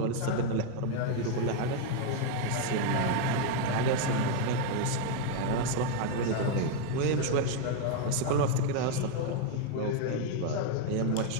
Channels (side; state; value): both; different; correlation 0.00